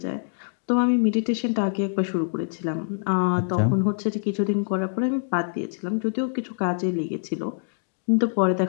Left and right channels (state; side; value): silent; right; digital silence